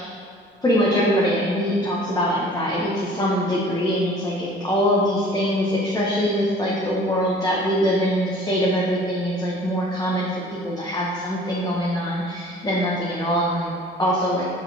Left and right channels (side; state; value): both; normal; correlation 0.49